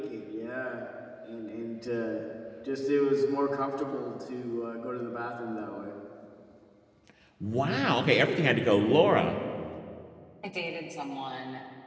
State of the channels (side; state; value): both; identical; correlation 1.00